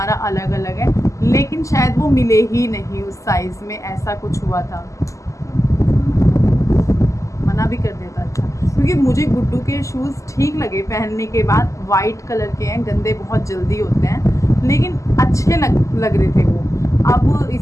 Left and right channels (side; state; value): right; late; 0.16 ms